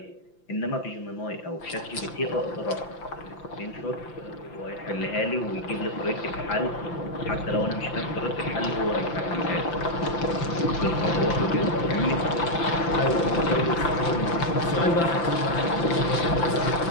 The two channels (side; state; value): right; late; 5.9 ms